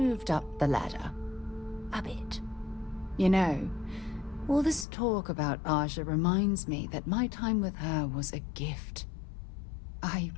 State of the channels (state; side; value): drops out; right; at 4.9 s